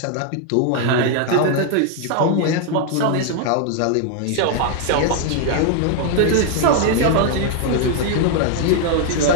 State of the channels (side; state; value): both; different; correlation 0.00